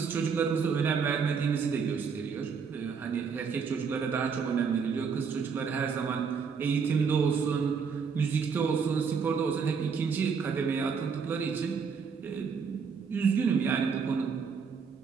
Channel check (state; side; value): quieter; left; 5.9 dB